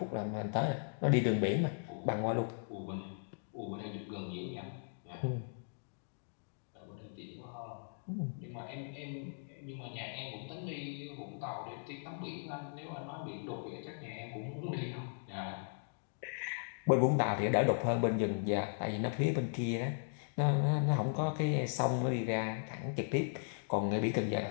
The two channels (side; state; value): right; silent; digital silence